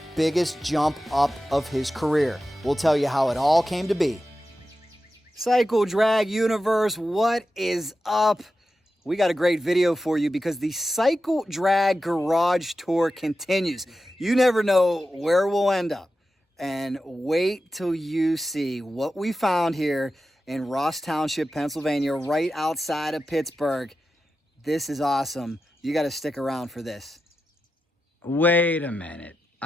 biggest jump up of his career. We'll tell you how it all came to be. Cycle Drag Universe, what is up? We got a great video for you because the Cycle Drag Garage Tour continues. You never know where we'll end up. And wait till you see what we found here in Ross Township, Pennsylvania, right outside of Pittsburgh. This is awesome. You got to stick around for this. Wait a minute.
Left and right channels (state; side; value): normal; both; correlation 0.91